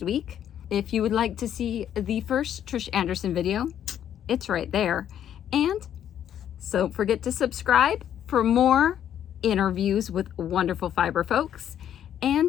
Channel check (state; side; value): quieter; right; 10.1 dB